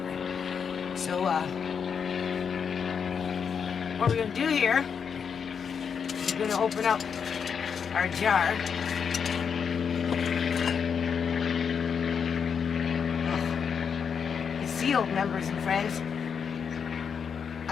right? So what we're gonna do here, we're gonna open up our jar. Oh, it's sealed, members and friends.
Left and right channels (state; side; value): quieter; right; 6.7 dB